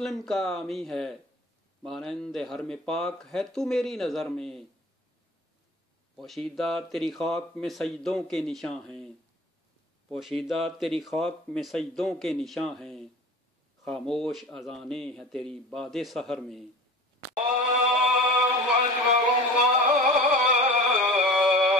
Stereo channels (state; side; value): normal; both; correlation 0.39